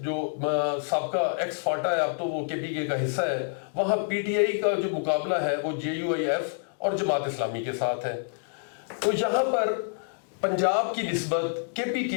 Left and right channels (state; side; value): silent; right; digital silence